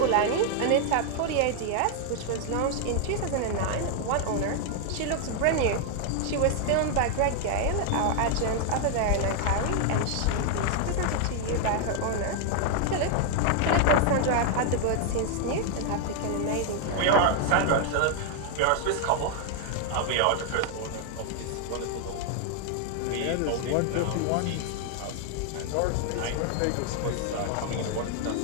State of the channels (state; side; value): different; both; correlation 0.00